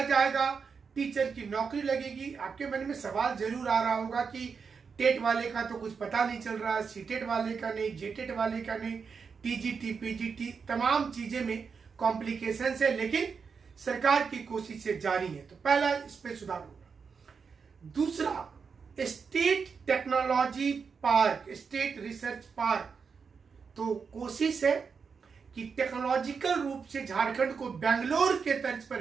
जाएगा, टीचर की नौकरी लगेगी। आपके मन में सवाल जरूर आ रहा होगा कि टेट वाले का तो कुछ पता नहीं चल रहा, सीटेट वाले का नहीं, जेटेट वाले का नहीं, टीजीटी पीजीटी तमाम चीजें में कॉम्प्लिकेशन है, लेकिन सरकार की कोशिशें जारी है। तो पहला इस पे सुधार होगा। दूसरा, state technology park, state research park. तो कोशिश है कि टेक्नोलॉजिकल रूप से झारखंड को बेंगलोर के तर्ज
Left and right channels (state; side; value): quieter; left; 5.7 dB